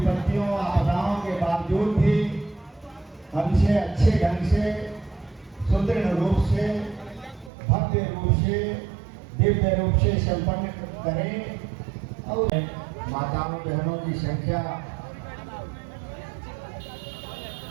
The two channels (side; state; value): left; drops out; at 7.5 s